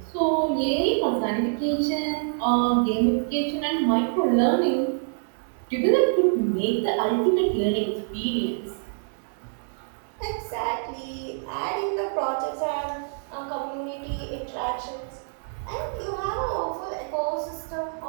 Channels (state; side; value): silent; left; digital silence